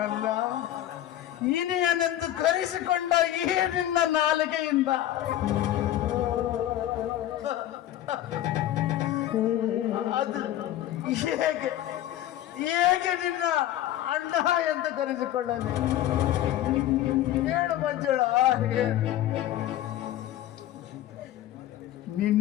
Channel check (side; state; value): right; quieter; 13.0 dB